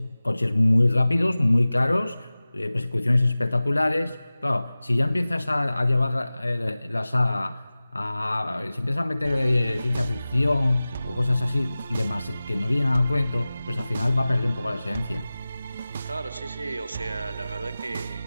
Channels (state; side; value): inverted; both; correlation -0.97